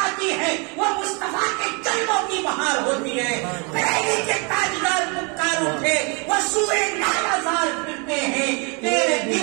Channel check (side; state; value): left; quieter; 32.8 dB